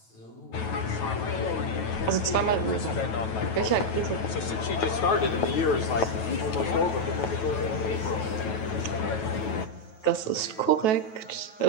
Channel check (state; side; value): late; right; 9.2 ms